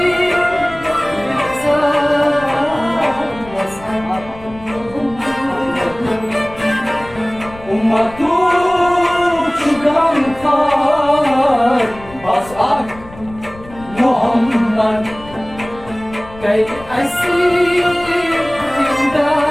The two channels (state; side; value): noise; left; rumble, 19 dB below the sound